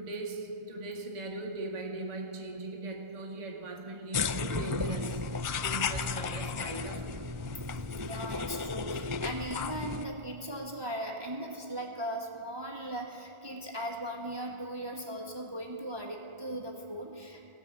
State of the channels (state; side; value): late; left; 1.4 ms